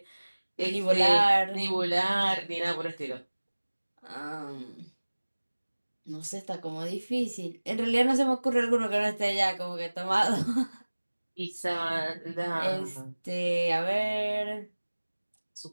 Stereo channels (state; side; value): inverted; both; correlation -1.00